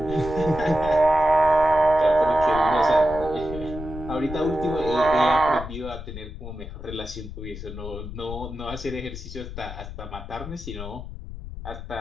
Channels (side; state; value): left; noise; rumble, 10 dB below the sound